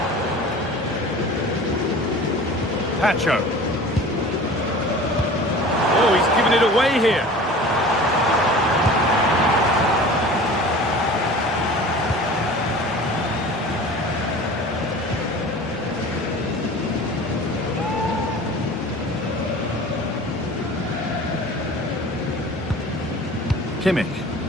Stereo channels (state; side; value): normal; both; correlation 0.41